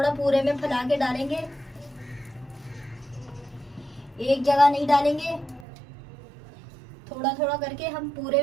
पूरे में फैला के डालेंगे, एक जगह नहीं डालेंगे, थोड़ा थोड़ा करके हम पूरे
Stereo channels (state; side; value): drops out; left; at 5.7 s